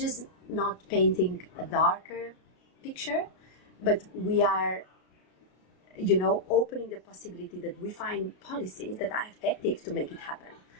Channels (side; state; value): right; late; 33 ms